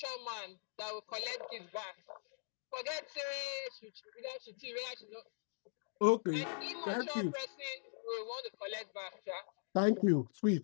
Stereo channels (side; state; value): right; silent; digital silence